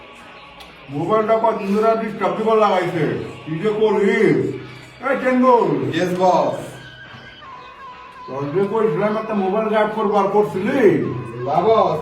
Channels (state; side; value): identical; both; correlation 1.00